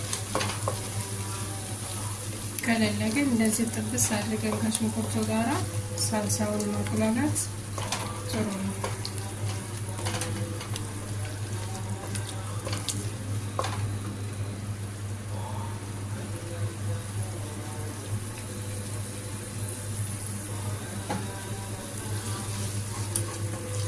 ከሌለ ግን እንደዚህ ጥብስ አድርገን ከሽንኩርቱ ጋራ ሳልሳውን ማቁላላት ጥሩ ነው።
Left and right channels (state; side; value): identical; both; correlation 1.00